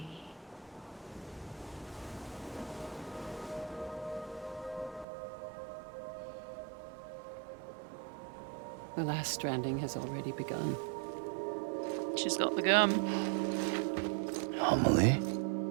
The last stranding has already begun. She's got the gum. Amelie?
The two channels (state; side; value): drops out; left; at 5.1 s